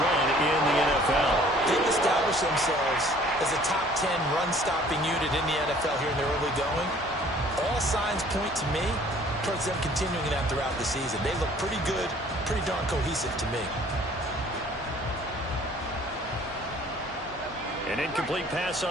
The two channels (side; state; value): both; normal; correlation 0.54